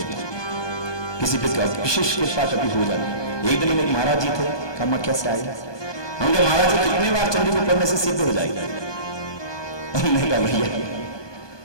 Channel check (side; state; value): right; late; 1.2 ms